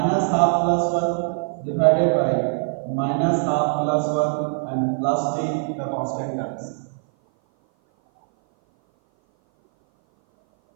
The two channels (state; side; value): silent; left; 57 dB below the other